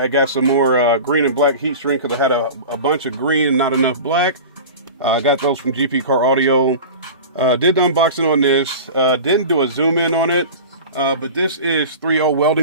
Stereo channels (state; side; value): inverted; both; correlation -0.34